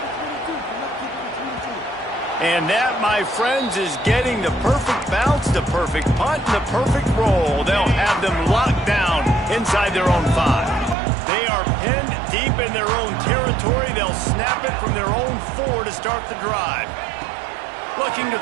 And that, my friends, is getting the perfect bounce, the perfect punt, and the perfect roll. They'll have them locked down inside their own 5. They are pinned deep in their own territory. They'll snap it from their own 4 to start the drive. Looking to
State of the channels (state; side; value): drops out; left; at 11.0 s